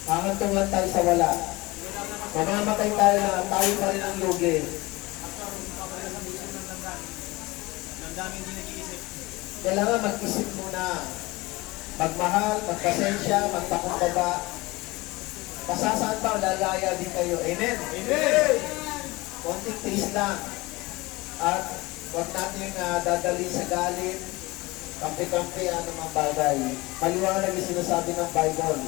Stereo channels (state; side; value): quieter; right; 21.9 dB